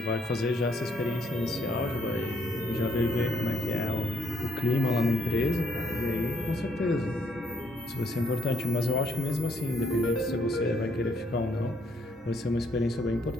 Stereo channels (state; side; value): normal; both; correlation 0.69